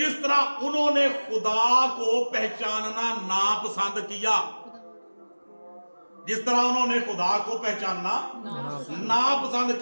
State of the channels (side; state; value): both; inverted; correlation -1.00